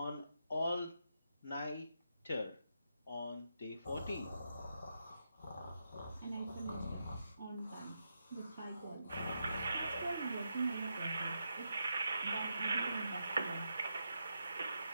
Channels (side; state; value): both; inverted; correlation -0.84